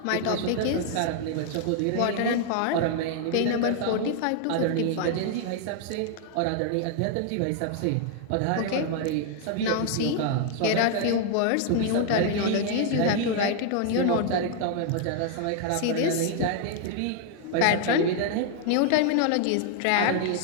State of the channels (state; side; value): different; both; correlation 0.00